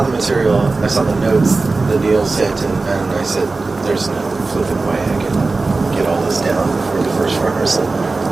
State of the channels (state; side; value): quieter; left; 3.7 dB